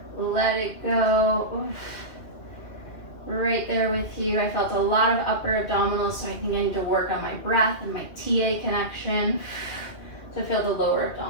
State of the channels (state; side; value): late; right; 2.4 ms